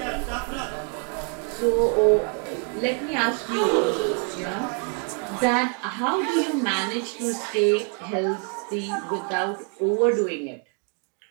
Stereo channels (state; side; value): quieter; left; 40.0 dB